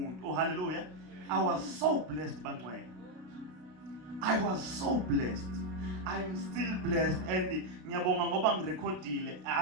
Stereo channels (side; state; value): left; late; 32 ms